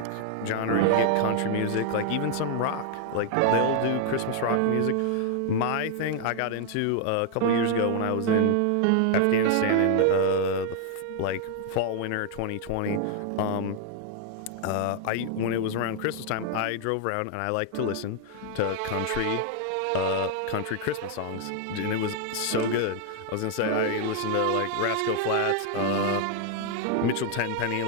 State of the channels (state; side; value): different; both; correlation 0.00